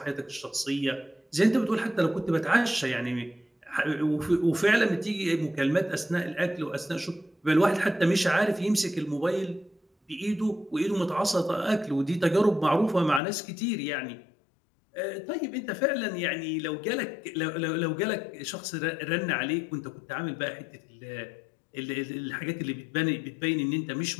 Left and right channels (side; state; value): right; drops out; at 13.2 s